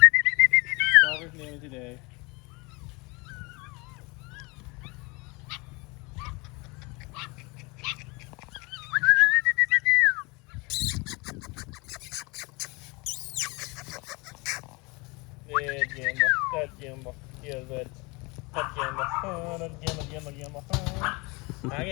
Draw his name today. That Jimbo. Yeah, that Jimbo. Oh, that Jimbo.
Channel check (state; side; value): quieter; right; 26.9 dB